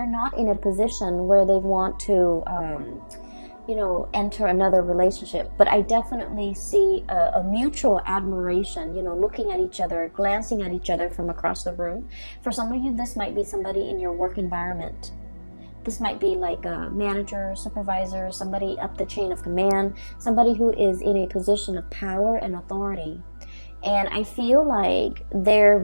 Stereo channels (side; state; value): both; inverted; correlation -1.00